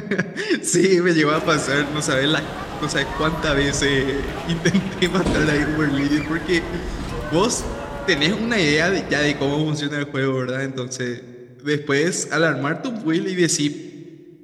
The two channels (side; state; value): both; identical; correlation 1.00